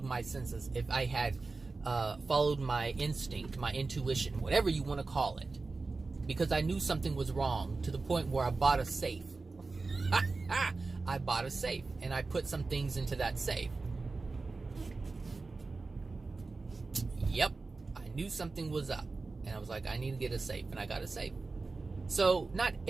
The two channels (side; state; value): left; quieter; 3.8 dB